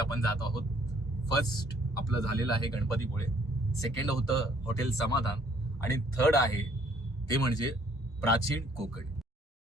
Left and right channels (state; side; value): normal; both; correlation 0.62